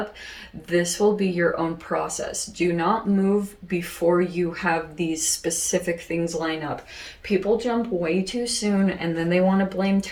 This will be your own process. Do not move before you have these specific things line up. People jump way too soon, and then they want to blame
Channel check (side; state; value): both; identical; correlation 1.00